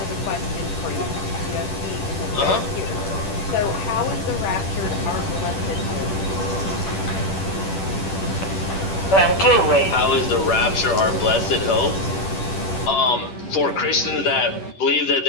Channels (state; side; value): late; right; 10 ms